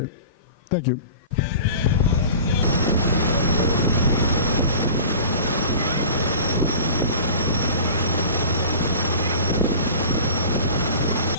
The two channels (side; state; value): both; inverted; correlation -0.39